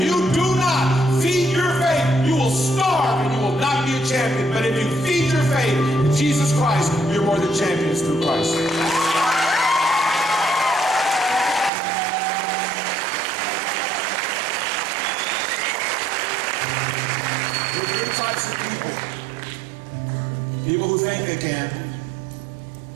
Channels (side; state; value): left; drops out; at 11.7 s